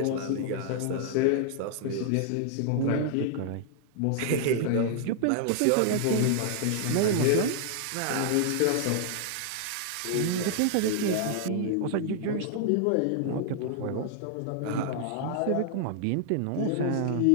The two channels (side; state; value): both; different; correlation -0.01